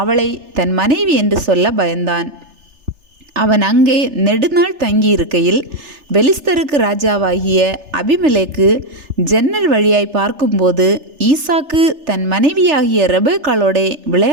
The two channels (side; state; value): left; late; 3.3 ms